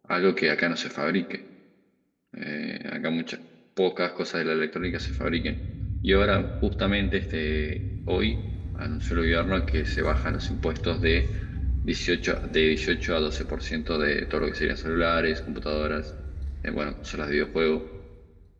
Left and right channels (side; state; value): both; identical; correlation 1.00